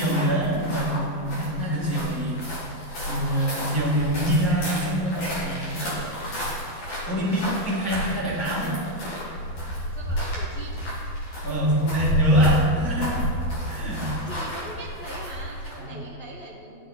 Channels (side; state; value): right; late; 12 ms